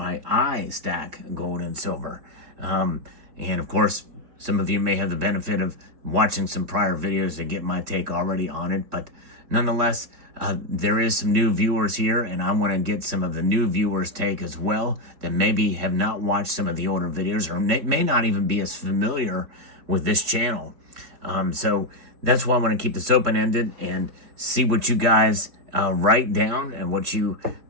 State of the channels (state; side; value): late; left; 4.3 ms